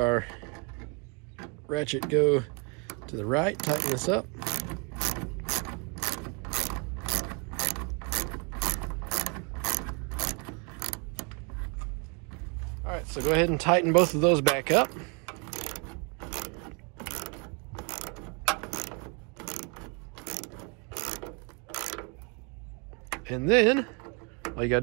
ratchet go to the right, tighten this up. All right, so go ahead and tighten both of those back up. And then all you gotta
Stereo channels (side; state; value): left; quieter; 33.7 dB